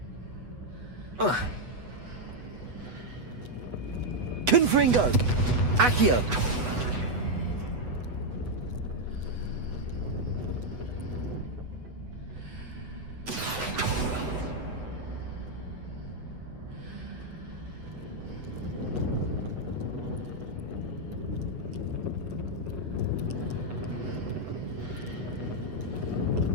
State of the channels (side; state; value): left; late; 8.1 ms